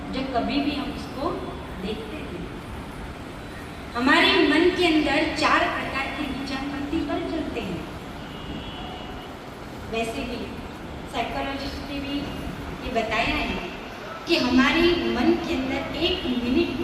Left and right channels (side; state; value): both; identical; correlation 1.00